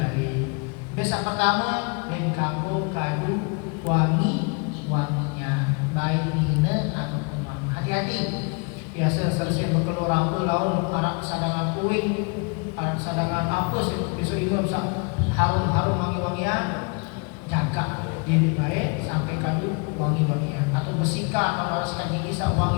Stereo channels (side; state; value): right; quieter; 33.4 dB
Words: Biasa pertama dan kamu kadu wanginya baik ini hati-hati. Biasa selesai berkeluar apa laun arak sadangan kuing, arak sadangan apa besok itu bisa harum wangi-wangian, jaga diri baik sampai kadu wangi-wangian atau bersihkan atau harus kaji kisah